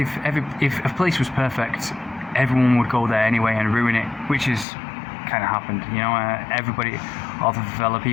a place was perfect, everyone would go there anyway and ruin it, which is kind of happened. You know, everybody, all the favela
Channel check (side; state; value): right; drops out; at 4.7 s